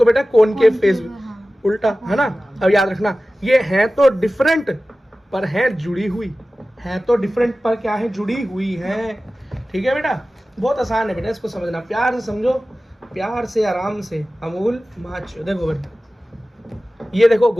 बेटा कॉनकेव फेस, उल्टा, है ना। अब याद रखना, ये है तो डिफरेंट पर है जुड़ी हुई, है तो डिफरेंट पर क्या है? जुड़ी हुई है। ठीक है बेटा, बहुत आसान है बेटा, इसको समझना, प्यार से समझो, प्यार से, आराम से। अमूल माचो, देखो बेटा, ये देखो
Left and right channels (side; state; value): both; normal; correlation 0.96